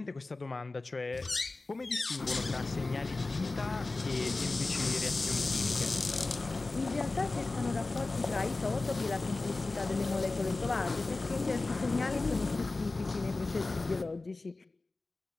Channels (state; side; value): quieter; right; 3.4 dB